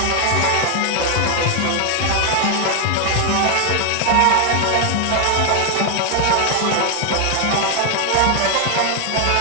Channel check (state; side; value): different; both; correlation 0.00